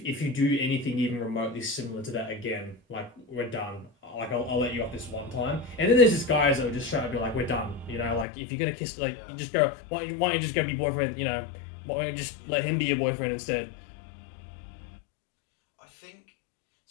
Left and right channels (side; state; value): right; drops out; at 8.2 s